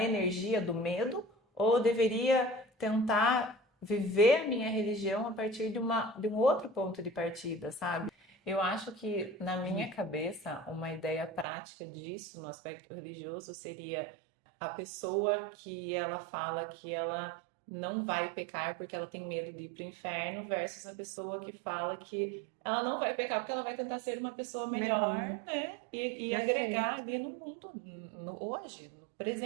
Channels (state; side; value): drops out; left; at 11.5 s